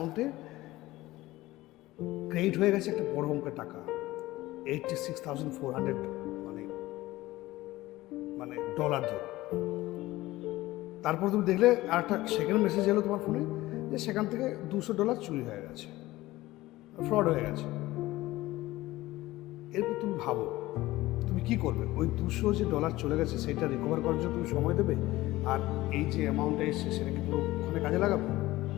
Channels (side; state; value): right; quieter; 17.8 dB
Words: ক্রেডিট হয়ে গেছে একটা বড় অঙ্কের টাকা, 86,400 মানে মানে ডলার ধরো। তারপর তুমি দেখলে আর একটা সেকেন্ড মেসেজ এলো তোমার ফোনে যে সেখান থেকে $200 চুরি হয়ে গেছে, ফ্রড হয়ে গেছে। এরপর তুমি ভাবো তুমি কি করবে? ওই $200 চলে গেছে সেটা রিকভার করার জন্য তুমি সময় দেবে, আর এই যে অ্যামাউন্টটা এসছে সেটা কি পুরো ওখানে কাজে লাগাবে?